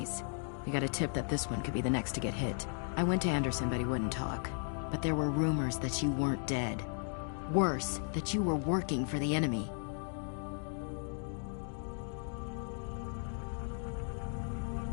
We got a tip that this one could be the next to get hit. I went to Anderson, but he wouldn't talk. But there were rumors that you weren't dead. Worse, that you were working for the enemy.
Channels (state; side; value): silent; right; 54 dB below the other